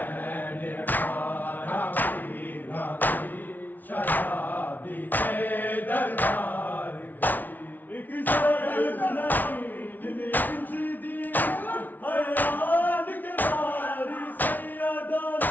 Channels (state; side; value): late; right; 0.082 ms